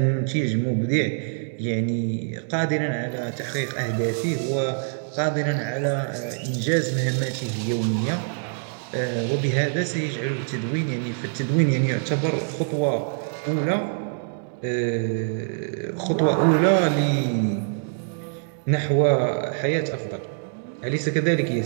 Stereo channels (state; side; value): silent; left; digital silence